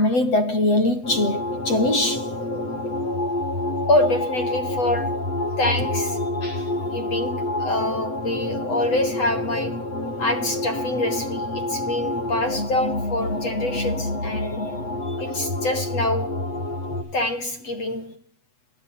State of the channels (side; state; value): right; late; 8.0 ms